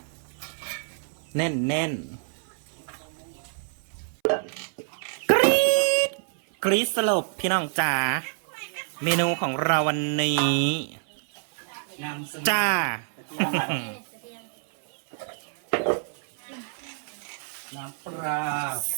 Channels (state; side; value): silent; left; 60 dB below the other